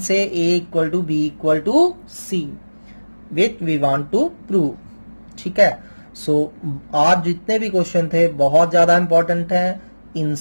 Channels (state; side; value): inverted; both; correlation -1.00